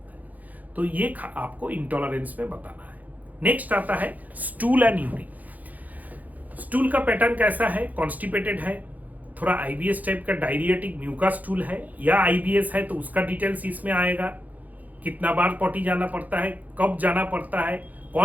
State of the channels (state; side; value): late; left; 0.080 ms